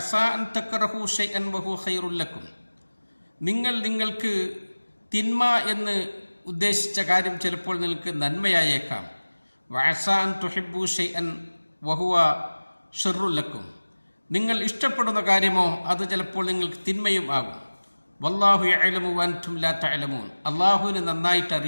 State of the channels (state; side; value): inverted; both; correlation -1.00